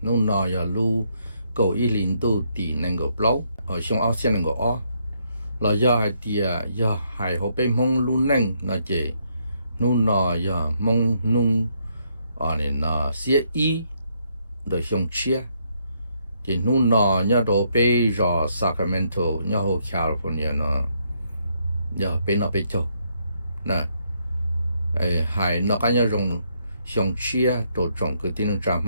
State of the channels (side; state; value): both; inverted; correlation -0.74